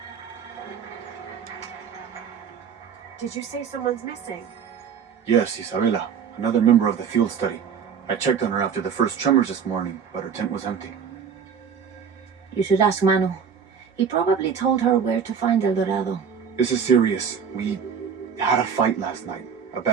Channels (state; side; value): quieter; left; 7.0 dB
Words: Did you say someone's missing? Yes, Isabela, another member of the field study. I checked on her after the first tremors this morning, but her tent was empty. You should ask Manu. He probably told her where to find El Dorado. This is serious. We had a fight last night. A